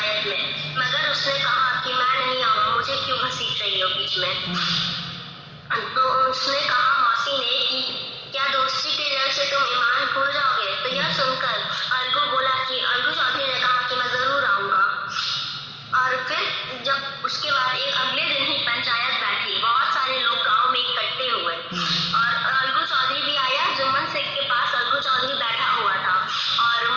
में, मगर उसने कहा कि मैं नहीं आऊंगा, मुझे क्यों घसीट रही हो बीच में। तो उसने कहा मौसी ने कि क्या दोस्ती के डर से तुम ईमान भूल जाओगे। तो यह सुनकर अलगू बोला कि अलगू चौधरी ने कहा कि मैं जरूर आऊंगा। और फिर जब उसके बाद एक अगले दिन ही पंचायत बैठी, बहुत सारे लोग गांव में इकट्ठे हुए और अलगू चौधरी भी आया। जुम्मन शेख के पास अलगू चौधरी बैठा हुआ था और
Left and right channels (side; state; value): both; identical; correlation 1.00